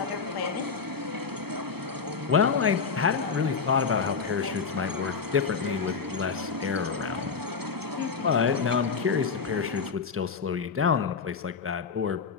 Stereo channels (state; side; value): quieter; right; 5.5 dB